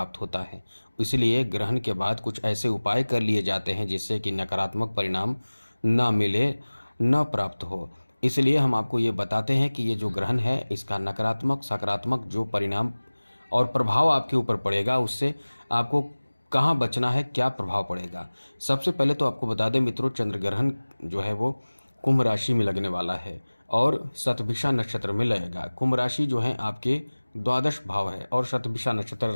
होता है। इसलिए ग्रहण के बाद कुछ ऐसे उपाय कर लिए जाते हैं जिससे कि नकारात्मक परिणाम ना मिले, न प्राप्त हो। इसलिए हम आपको ये बताते हैं कि ये जो ग्रहण है इसका नकारात्मक सकारात्मक जो परिणाम और प्रभाव आपके ऊपर पड़ेगा, उससे आपको कहाँ बचना है, क्या प्रभाव पड़ेगा। सबसे पहले तो आपको बता दें मित्रों, चंद्र ग्रहण जो है वो कुंभ राशि में लगने वाला है और शतभिषा नक्षत्र में लगेगा। कुंभ राशि जो है आपके द्वादश भाव है और शतभिषा नक्षत्र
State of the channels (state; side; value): inverted; both; correlation -1.00